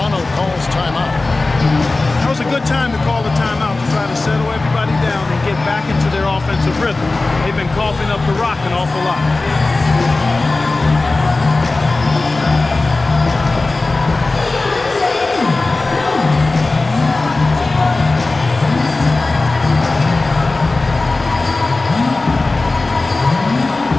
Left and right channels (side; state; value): right; quieter; 3.3 dB